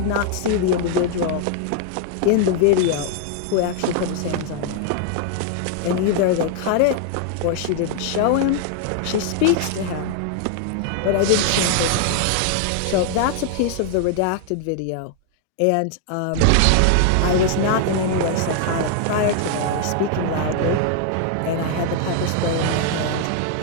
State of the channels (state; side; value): different; both; correlation 0.00